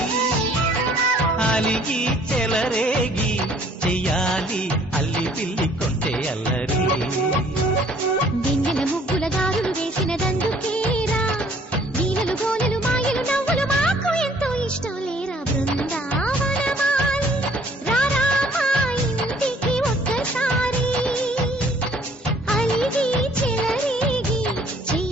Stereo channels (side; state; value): both; normal; correlation 0.59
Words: అలిగి చెలరేగి చెయ్యాలి అల్లి పిల్లి కొంటే అల్లరి దింగల ముగ్గుల దారులు వేసినదందుకేరా వీణలు గోలెలు మాయలు నవ్వులు మాకు ఎంతో ఇష్టం లేరా బృందావనమాలి రారామా ఇంటికి ఒక్కసారి అలిగి చెలరేగి